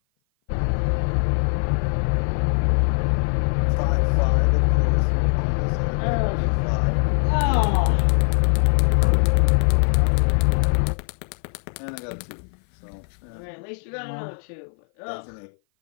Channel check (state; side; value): silent; right; 56 dB below the other